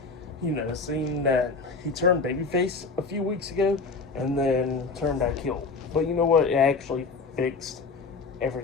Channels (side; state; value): right; quieter; 4.2 dB